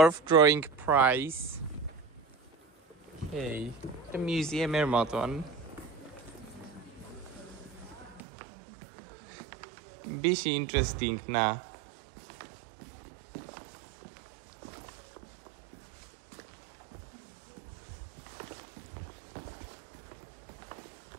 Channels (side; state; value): left; drops out; at 8.2 s